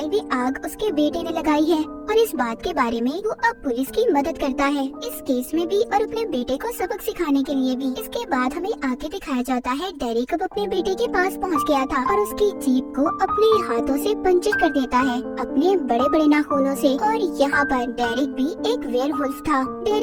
में आग उसके बेटे ने लगाई है और इस बात के बारे में वो अब पुलिस की मदद करता है इस केस में भी और अपने बेटे को सबक सिखाने के लिए भी। इसके बाद हमें आगे दिखाया जाता है डेरिक अब अपने बेटे के पास पहुंच गया था और उसकी जीप को अपने हाथों से पंचर कर देता है अपने बड़े बड़े नाखूनों से। और यहाँ पर डेरिक भी एक वेयरवुल्फ था।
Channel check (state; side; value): identical; both; correlation 1.00